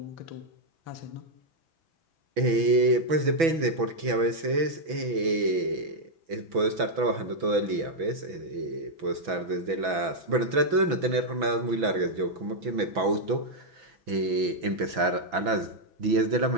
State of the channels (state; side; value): late; left; 6.1 ms